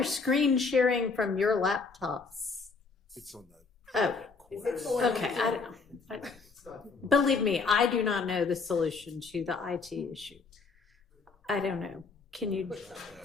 screen sharing from your laptops. It's on the. Oh, okay, I don't know. Believe me, I do not know the solution to the IT issue. I don't know. Can you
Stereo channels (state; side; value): quieter; right; 4.5 dB